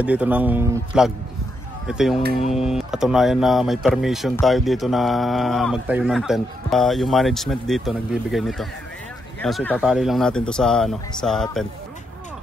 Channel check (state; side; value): normal; both; correlation 0.80